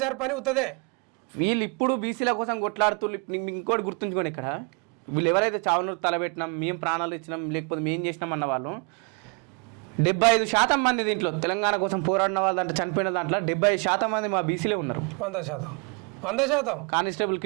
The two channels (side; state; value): left; quieter; 34.6 dB